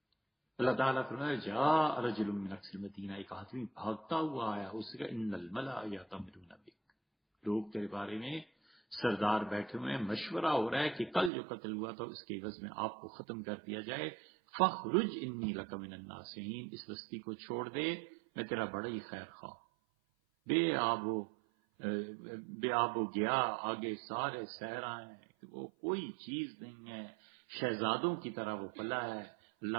اللہ تعالیٰ فرمایا جاء رجل من اقصى المدینہ، ایک آدمی بھاگتا ہوا آیا، اس کا ان الملأ یأتمرون بک، لوگ تیرے بارے میں سردار بیٹھے ہوئے ہیں، مشورہ ہو رہا ہے کہ کل جو قتل ہوا تھا اس کے عوض میں آپ کو ختم کر دیا جائے، فاخرج انی لک من الناصحین، اس بستی کو چھوڑ دے، میں تیرا بڑا ہی خیر خواہ۔ بے آب و گیا، آگے سارے صحرا ہیں کہ وہ کوئی چیز نہیں ہے، شہزادوں کی طرح وہ پلا ہے۔ اللہ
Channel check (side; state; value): left; drops out; at 11.3 s